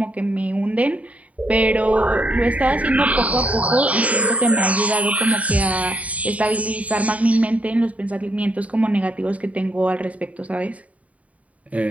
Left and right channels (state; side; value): late; left; 0.068 ms